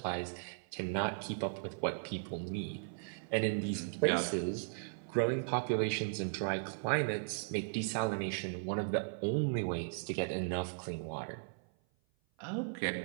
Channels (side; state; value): left; silent; 53 dB below the other